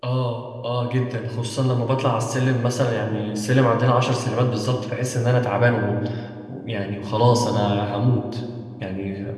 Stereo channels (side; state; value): both; identical; correlation 1.00